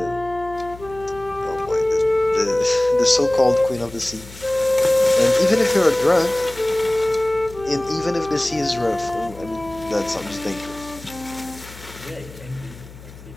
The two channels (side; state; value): left; noise; hum, 18 dB below the sound